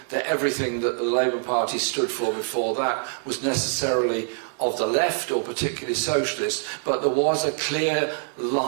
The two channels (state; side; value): silent; left; 58 dB below the other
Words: that everything that the Labour Party stood for before that was necessarily of the left or particularly socialist, but there was a clear